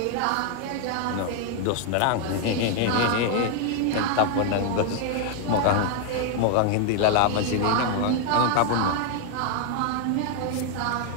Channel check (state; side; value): different; both; correlation 0.00